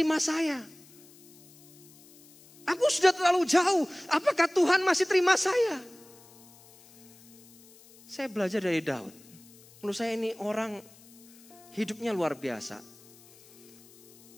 saya? Aku sudah terlalu jauh. Apakah Tuhan masih terima saya? Saya belajar dari Daud. Menurut saya ini orang hidupnya luar biasa.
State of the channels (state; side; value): noise; left; hiss, 24 dB below the sound